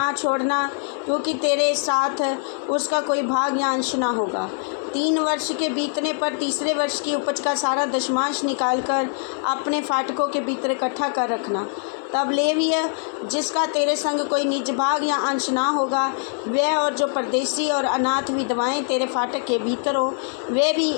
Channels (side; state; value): right; silent; 63 dB below the other